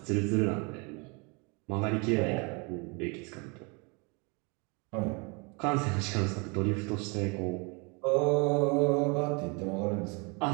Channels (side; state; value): left; quieter; 30.9 dB